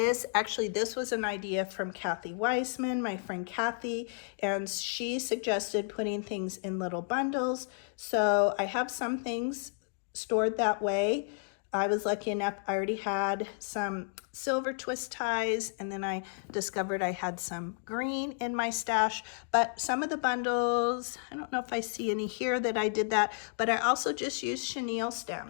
actually this was an idea from Kathy Weissman, my friend Kathy, and she suggested putting things in little bundles. So I have some things stored that way. I was lucky enough, I already had some silver twist ties, and then I discovered I had some green in my stash. But some of the bundles, I don't know if I see any here that I did that, but I also just used chenille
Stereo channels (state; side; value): silent; right; digital silence